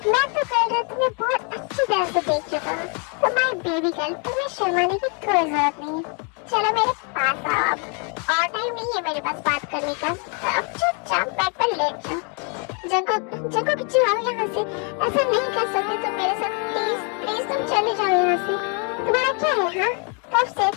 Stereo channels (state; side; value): quieter; right; 37.5 dB